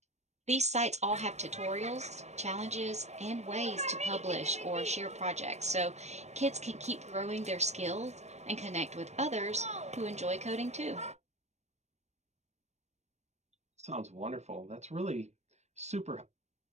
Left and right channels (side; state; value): left; late; 0.32 ms